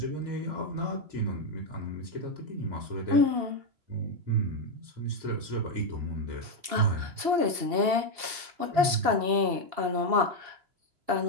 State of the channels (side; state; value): left; late; 2.8 ms